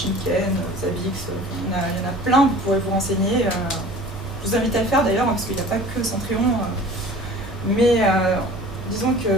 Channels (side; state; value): both; normal; correlation 0.44